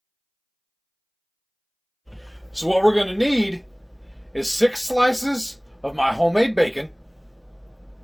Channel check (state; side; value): identical; both; correlation 1.00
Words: So what we're gonna need is 6 slices of my homemade bacon,